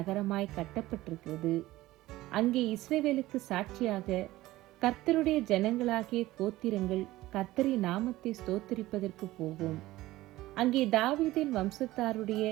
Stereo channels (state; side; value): quieter; left; 17.1 dB